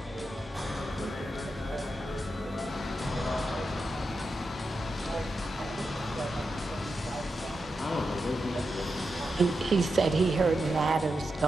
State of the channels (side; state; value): both; normal; correlation 0.88